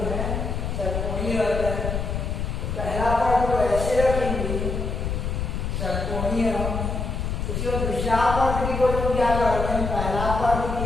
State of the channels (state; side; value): noise; left; rumble, 2 dB below the sound